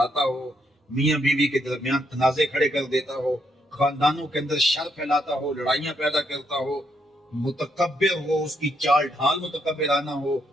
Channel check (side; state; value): both; normal; correlation 0.76